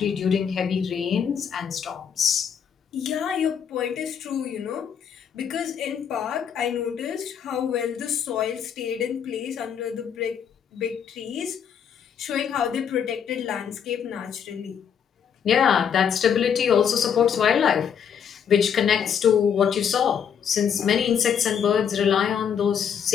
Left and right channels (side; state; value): right; quieter; 7.8 dB